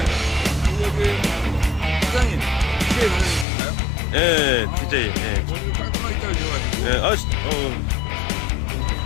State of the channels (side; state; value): right; drops out; at 3.5 s